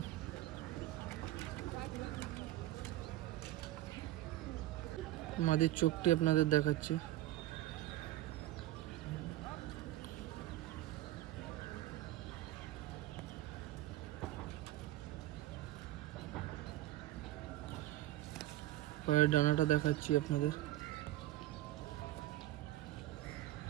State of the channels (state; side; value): quieter; left; 15.5 dB